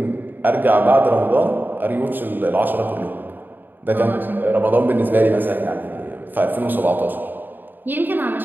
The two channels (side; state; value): left; late; 0.091 ms